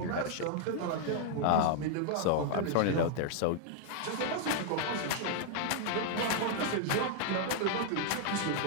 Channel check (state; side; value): different; both; correlation 0.00